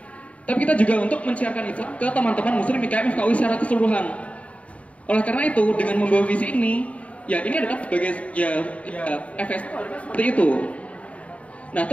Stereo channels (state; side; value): late; right; 0.065 ms